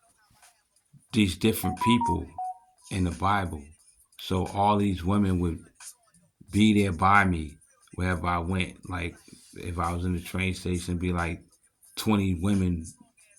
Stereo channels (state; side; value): identical; both; correlation 1.00